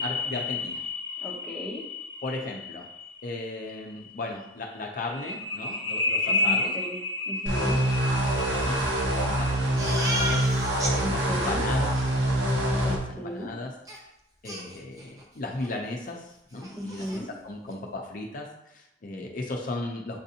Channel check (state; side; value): normal; both; correlation 0.37